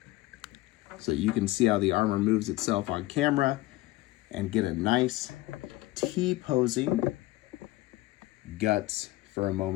so you can see how the armor moves itself on camera and get a nice T-posing guts for a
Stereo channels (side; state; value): right; quieter; 18.1 dB